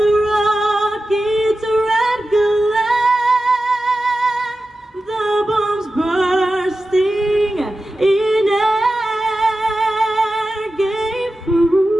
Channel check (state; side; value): normal; both; correlation 0.93